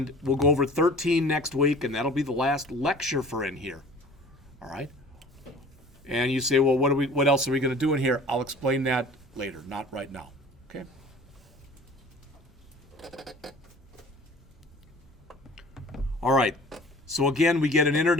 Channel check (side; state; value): both; normal; correlation 0.45